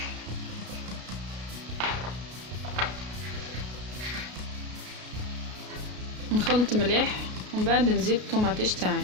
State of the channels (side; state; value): left; late; 33 ms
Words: نخلط مليح ومن بعد نزيد الطوماطيش تاعي.